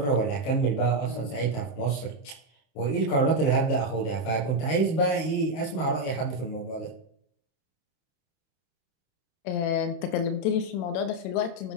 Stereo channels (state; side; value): late; right; 27 ms